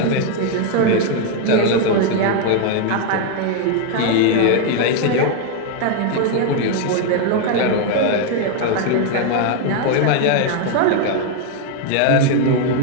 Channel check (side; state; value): both; different; correlation 0.01